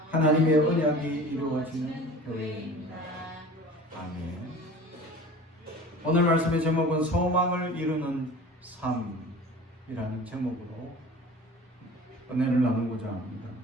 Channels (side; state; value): both; normal; correlation 0.41